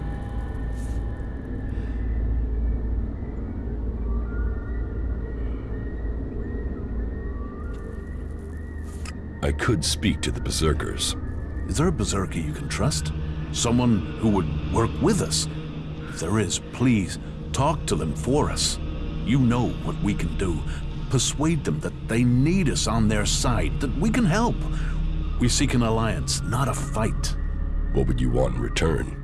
I could speak to the Berserkers. Is there a Berserker you can trust? Someone who would work with us? If there is, please, talk to them for us. You know what we can do. Persuade them that they need us on their side, that we can help. We seek an alliance, not a fight. What would you want in return?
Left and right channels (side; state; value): both; identical; correlation 1.00